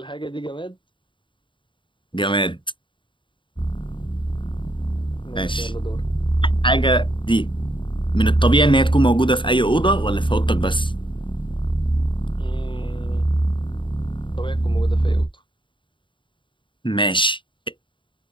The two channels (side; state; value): right; late; 0.24 ms